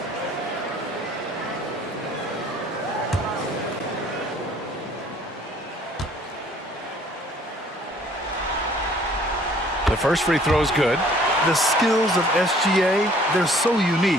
The first free throw is good. The skills of SGA, they're so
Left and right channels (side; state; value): both; normal; correlation 0.57